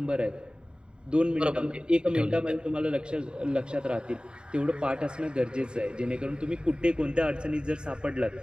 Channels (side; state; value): left; late; 0.049 ms